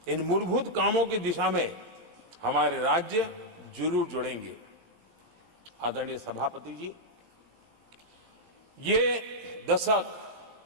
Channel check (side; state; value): left; late; 18 ms